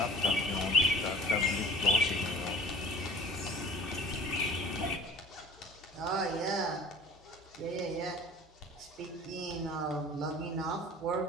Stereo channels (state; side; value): normal; both; correlation 0.45